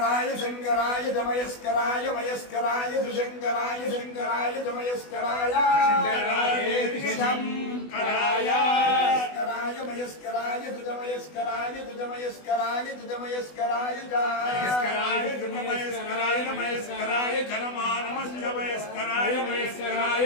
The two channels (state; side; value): late; right; 20 ms